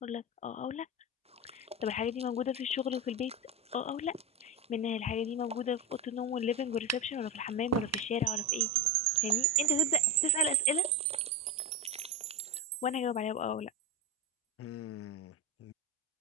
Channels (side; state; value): both; normal; correlation 0.17